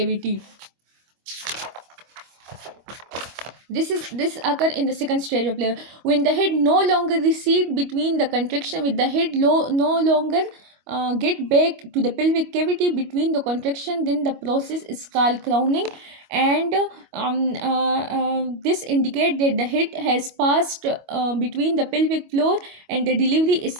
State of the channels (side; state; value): left; late; 25 ms